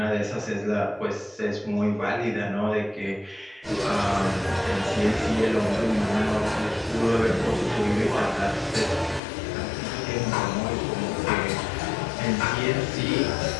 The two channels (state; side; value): drops out; right; at 9.2 s